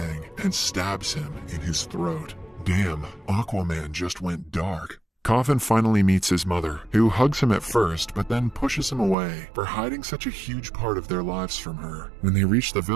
and stabs him in his throat. Damn, Aquaman just went dark. Coffin finally meets his mother, who hugs him at first but then pushes him away for hiding such a huge part of their lives from her. When they reach the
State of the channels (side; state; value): left; drops out; at 9.2 s